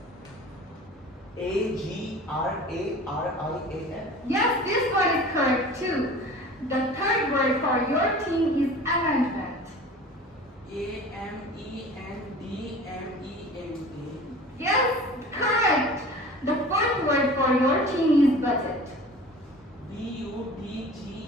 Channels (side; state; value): both; normal; correlation 0.41